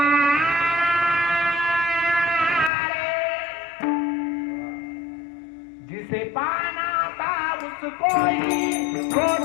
रे, जिसे पाना था उसको ही खो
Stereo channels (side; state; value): right; drops out; at 2.7 s